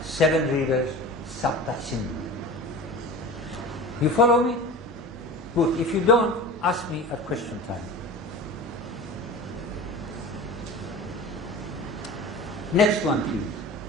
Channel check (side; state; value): both; normal; correlation 0.35